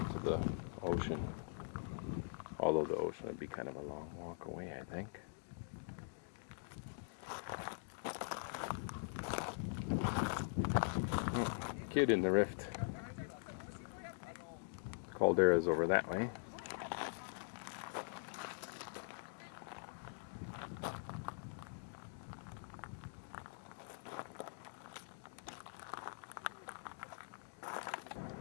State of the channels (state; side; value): silent; right; digital silence